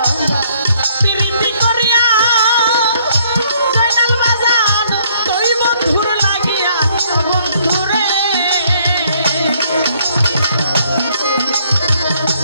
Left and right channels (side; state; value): both; inverted; correlation -0.65